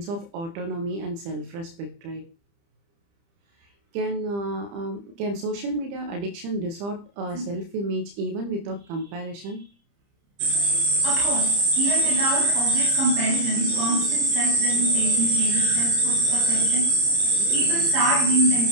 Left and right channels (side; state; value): left; late; 30 ms